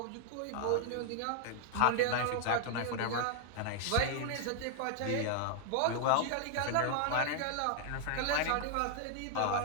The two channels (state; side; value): different; both; correlation -0.01